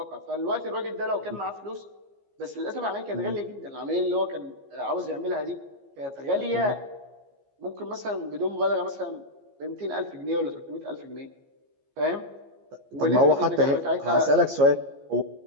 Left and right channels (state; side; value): late; left; 15 ms